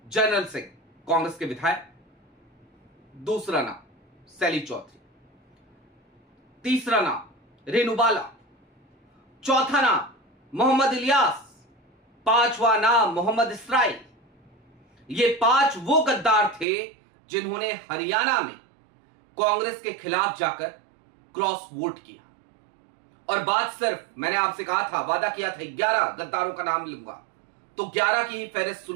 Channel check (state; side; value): drops out; left; at 16.7 s